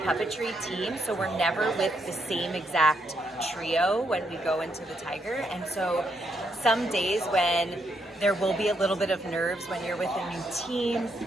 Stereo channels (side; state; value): both; normal; correlation 0.77